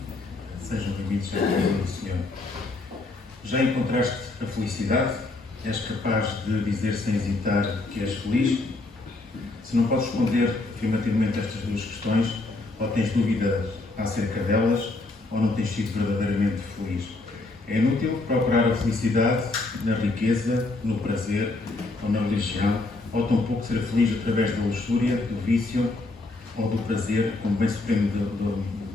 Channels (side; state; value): right; quieter; 3.1 dB